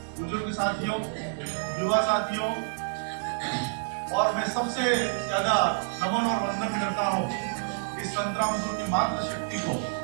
बुजुर्ग साथियों, युवा साथियों, और मैं सबसे ज्यादा नमन और वंदन करता हूँ इस संतरामपुर की मातृ शक्ति को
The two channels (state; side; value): silent; left; digital silence